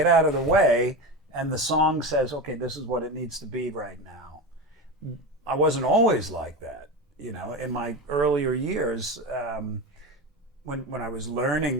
out of the way and the song says, okay, this is what it needs to be right now. I wasn't always like that, you know. In my earlier years, when I was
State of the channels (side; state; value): both; normal; correlation 0.22